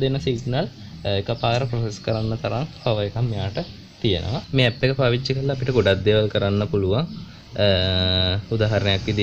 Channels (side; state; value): both; identical; correlation 1.00